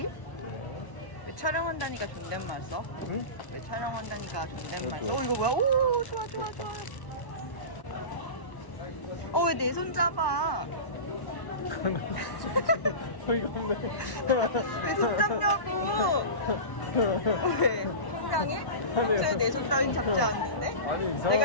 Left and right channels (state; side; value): late; right; 1.0 ms